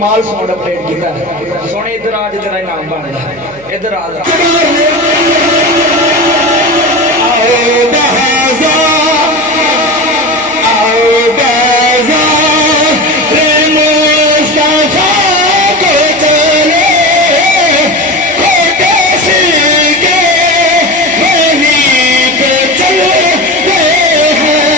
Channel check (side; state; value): right; noise; hum, 24 dB below the sound